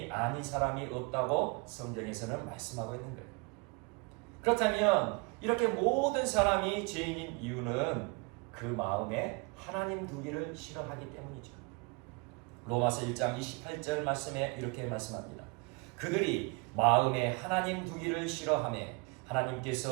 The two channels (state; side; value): quieter; left; 29.9 dB